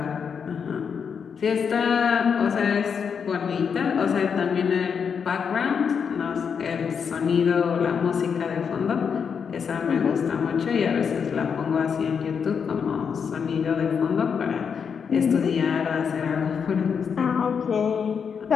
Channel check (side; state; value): right; quieter; 6.6 dB